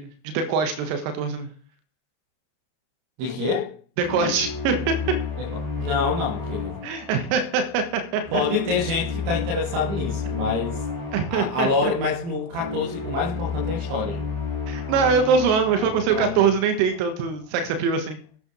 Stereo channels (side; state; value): left; late; 30 ms